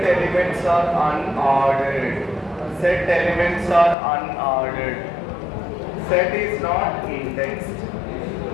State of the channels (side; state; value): right; drops out; at 4.0 s